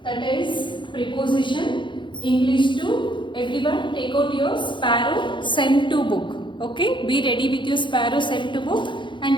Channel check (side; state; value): right; late; 0.23 ms